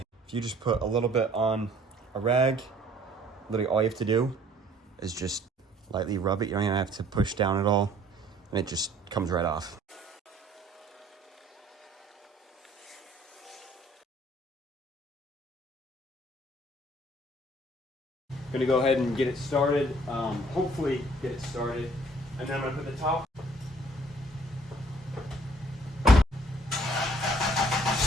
you just put a little bit on a rag, literally all you have to do is just lightly rub it. You don't even have to push down at all, and it just comes right off. Gonna go ahead and get it started. Hopefully get it started. And then I'm gonna put the top.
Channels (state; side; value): normal; both; correlation 0.58